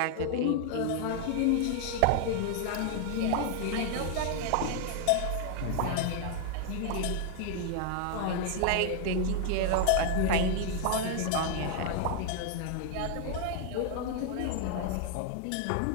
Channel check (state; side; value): different; both; correlation 0.00